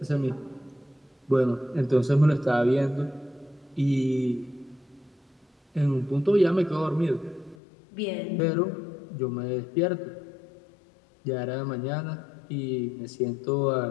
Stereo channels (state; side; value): drops out; right; at 7.6 s